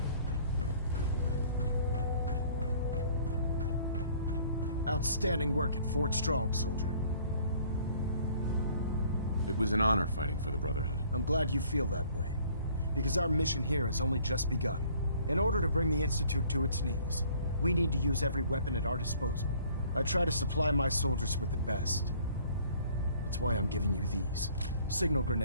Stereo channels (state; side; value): inverted; both; correlation -0.56